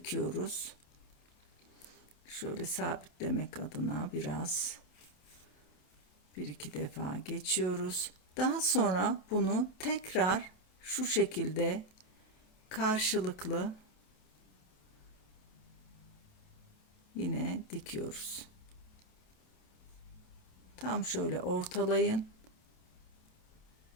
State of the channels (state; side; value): late; right; 27 ms